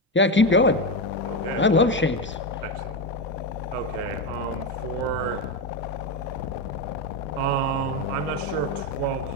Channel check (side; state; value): both; normal; correlation 0.13